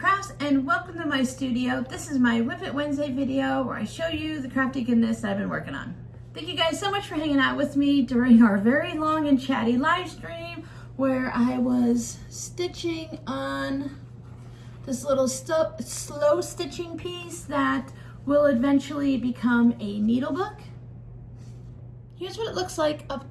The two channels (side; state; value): both; identical; correlation 1.00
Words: and welcome to my studio. This is my Whip It Wednesday video where I show you the crafty goodness that I've been working on. Thank you guys so much for hanging out with me during our very long and chatty live stream where I was stitching on this little slow stitching piece that will eventually become a needle book. Here's what it looks like up